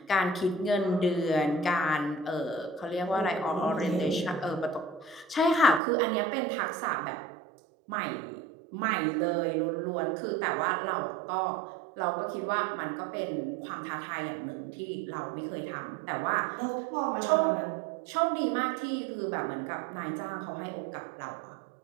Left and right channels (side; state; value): left; drops out; at 5.8 s